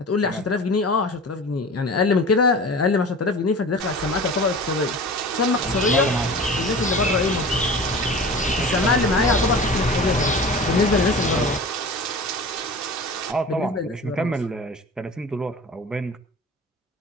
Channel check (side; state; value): both; normal; correlation 0.36